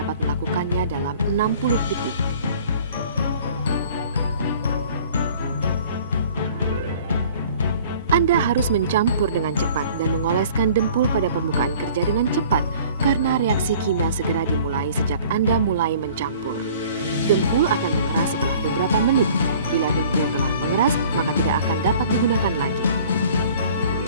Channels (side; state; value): both; inverted; correlation -0.50